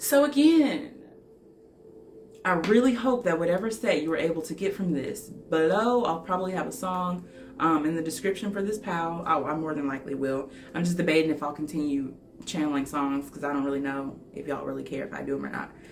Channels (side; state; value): both; identical; correlation 1.00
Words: again, I really hope that whatever set you were able to get from this. Below, I'll probably have a song in the description for this pal. I more than likely will. I'm just debating if I'll continue channeling songs because I don't really know if y'all really care if I do them or not.